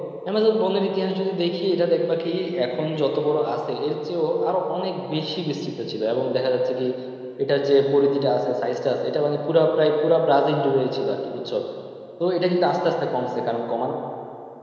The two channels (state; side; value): identical; both; correlation 1.00